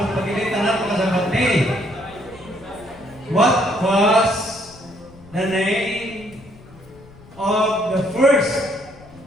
pagkilitan na pagkasabat ni. What was the name of the first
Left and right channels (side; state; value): left; noise; rumble, 22 dB below the sound